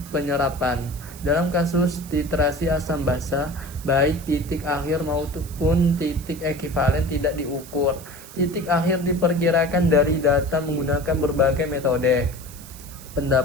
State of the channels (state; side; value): noise; right; hiss, 18 dB below the sound